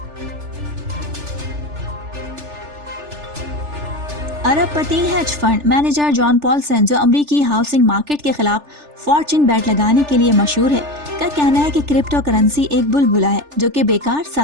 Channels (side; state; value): left; late; 3.4 ms